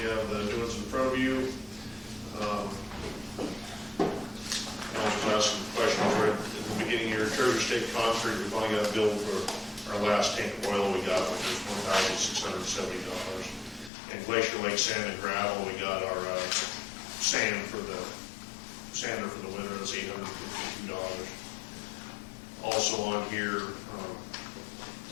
have the doings in front of you. I was asking questions right at the beginning of your Treasure State Concrete. We finally got a bill for our last tank of oil we got, which was $1,670. And Glacier Lake Sand and Gravel, we got our sander for the winter. That's $852. Also on here,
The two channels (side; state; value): right; drops out; at 13.9 s